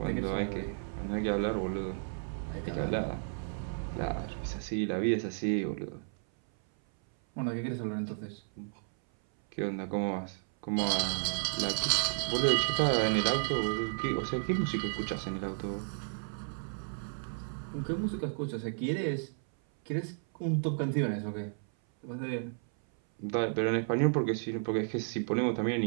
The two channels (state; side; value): silent; left; 56 dB below the other